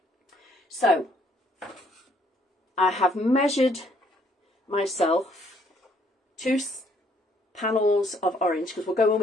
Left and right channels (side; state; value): both; normal; correlation 0.66